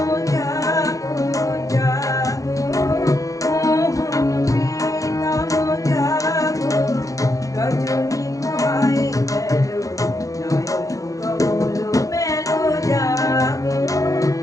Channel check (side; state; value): right; late; 0.16 ms